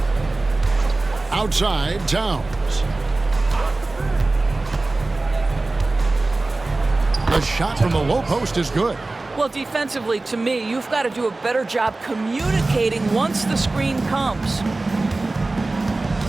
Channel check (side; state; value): left; quieter; 3.1 dB